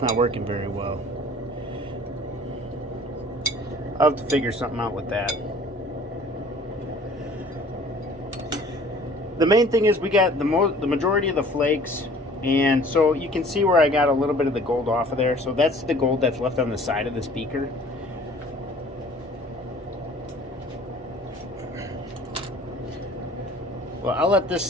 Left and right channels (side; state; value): both; normal; correlation 0.50